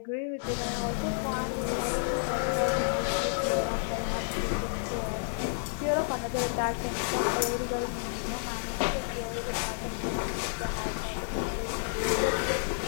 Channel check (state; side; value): silent; right; digital silence